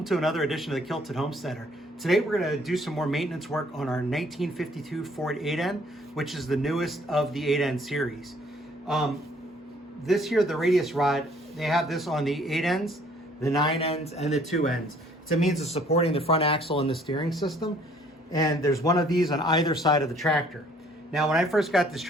to another edition of the Kilted Homesteader. Today we're going to do some more maintenance work on our 1952 Ford 8N, which is the newest of the 8N series. This here, the Radius Rod, they have this on the 8Ns, the 9Ns, and the 2Ns. It's a means of supporting the front axle and the steering system, and there's one of these on either side of the tractor. Now, when I first got this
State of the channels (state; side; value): normal; both; correlation 0.60